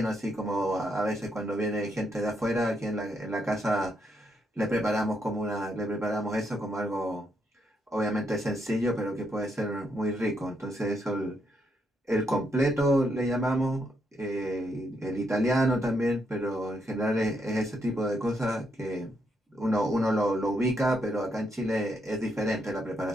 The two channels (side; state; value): both; normal; correlation 0.78